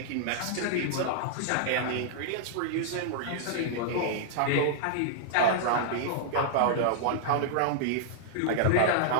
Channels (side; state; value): both; different; correlation -0.01